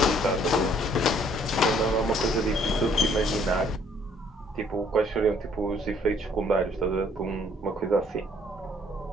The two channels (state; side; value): normal; both; correlation 0.62